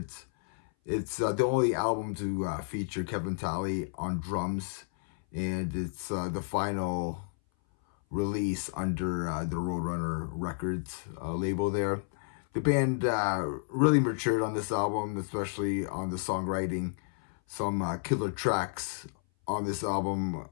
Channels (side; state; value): right; silent; 57 dB below the other